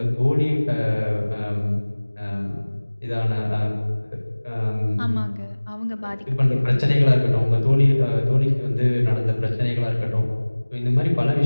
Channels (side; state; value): both; inverted; correlation -1.00